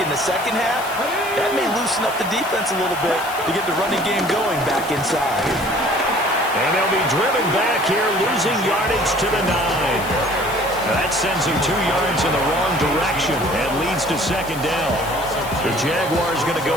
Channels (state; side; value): noise; left; hiss, 14 dB below the sound